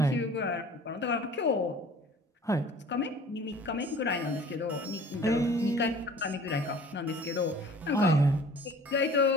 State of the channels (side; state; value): both; normal; correlation 0.48